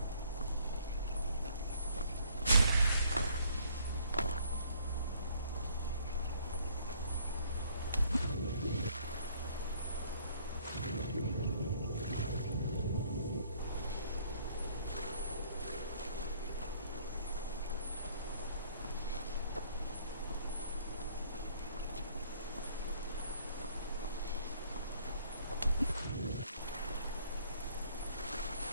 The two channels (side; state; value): both; inverted; correlation -0.61